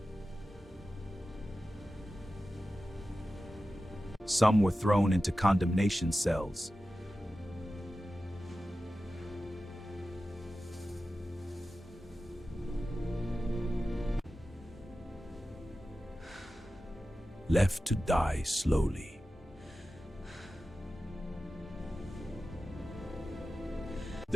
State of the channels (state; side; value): normal; both; correlation 0.94